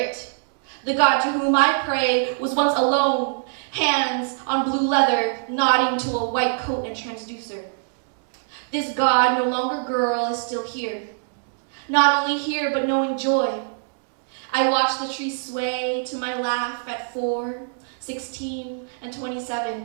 The God to whom I pray was once alone, hands on blue leather, nodding to a white coat and transducer. This God, no longer girl, is still here. Not only here, but knowing joy. I watch the trees sway to my laugh at 4, 16, and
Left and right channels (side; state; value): left; silent; digital silence